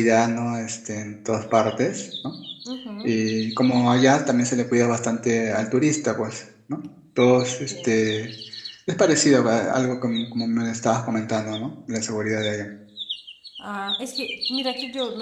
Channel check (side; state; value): both; identical; correlation 1.00